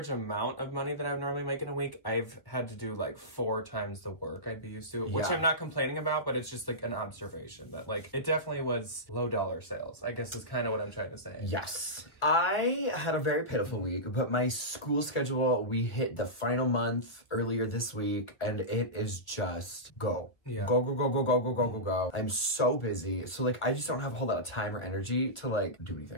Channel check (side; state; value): right; late; 1.4 ms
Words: amount of money that I would normally make in a week, I've had to do like 4 times the work I'd be used to, which I'm not complaining about, but it's just like an observation that like it definitely was low dollar sales, I guess is kind of what I'm trying to say. Yes. I had a very pitiful week, but my school schedule, we hit the final month earlier this week, and it is just go. Yeah. Go, go, go, go, go, go, go, go, go. I'm so busy. So like, I just don't have a whole lot of time or energy to like do